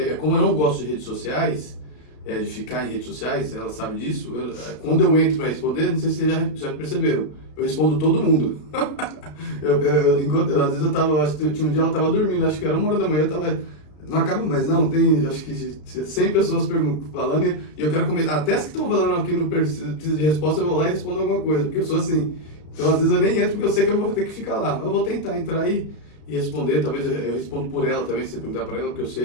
como eu não gosto de redes sociais, de ficar em redes sociais, ela sabe disso. Quando eu entro para responder, não sei se vocês já perceberam, eu respondo todo mundo. Às vezes acho que tinha um dia ela estava dormindo, acho que era 1h da manhã, eu tava, não acaba mais não, tem acho que 100 pessoas falando e eu quero comentar, até as que estão falando aqui não precisa de resposta, eu vou lá e respondo alguma coisa, porque eu sou assim. Então às vezes eu nem entro porque eu sei que eu vou ter que ficar lá, mas eu vou tentar entrar e responder, talvez eu respondo por ela também, se você perguntar para ela, porque eu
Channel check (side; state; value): right; late; 33 ms